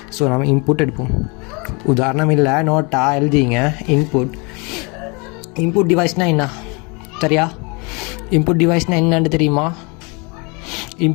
ஸோ நம்ம இன்புட் எடுப்போம். உதாரணம் இல்லை, நோட்டாக எழுதிங்க. இன்புட் டிவைஸ்னால் என்ன? சரியா? இன்புட் டிவைஸ்னால் என்னன்னு தெரியுமா?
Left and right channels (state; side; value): quieter; right; 30.3 dB